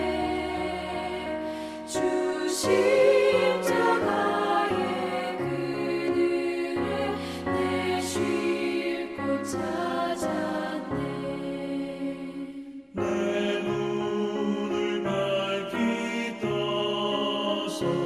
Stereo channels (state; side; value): identical; both; correlation 1.00